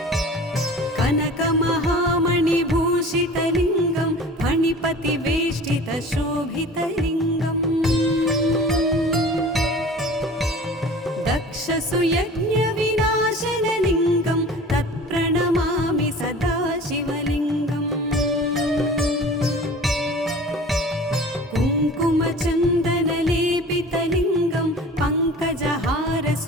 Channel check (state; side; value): normal; both; correlation 0.41